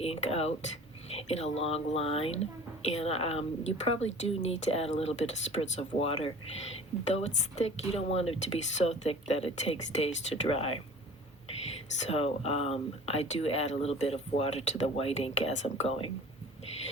out in a long line, and you probably do need to add a little bit of spritz of water. Though it's thick, you don't want it to be so thick that it takes days to dry. So I do add a little bit of water to the white ink as I'm going.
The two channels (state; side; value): normal; both; correlation 0.43